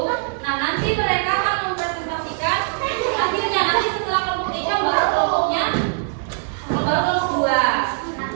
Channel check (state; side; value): silent; left; digital silence